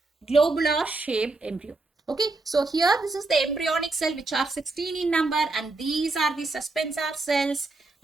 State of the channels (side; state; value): left; quieter; 3.4 dB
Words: globular shaped embryo. Okay, so here this is the embryonic cell which are 16 in number and these are the suspensor cells,